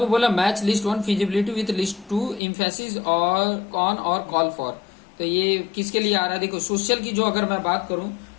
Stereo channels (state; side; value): drops out; right; at 2.4 s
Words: बोला match list 1 feasibility with list 2 emphasis और ऑन और कॉल फॉर। तो ये किसके लिए आ रहा है, देखो सोशल की जो अगर मैं बात करूं